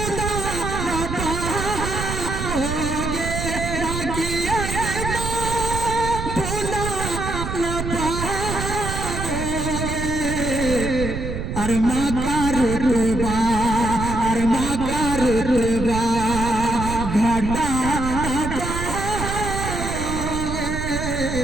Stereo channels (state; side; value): noise; right; rumble, 4 dB below the sound